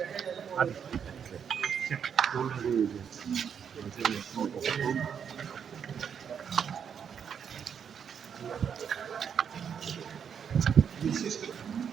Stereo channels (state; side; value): quieter; left; 7.6 dB